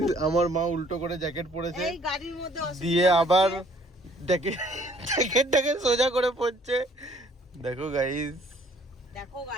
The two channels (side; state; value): both; normal; correlation 0.59